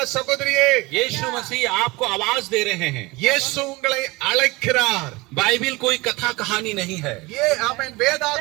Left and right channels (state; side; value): quieter; left; 23.0 dB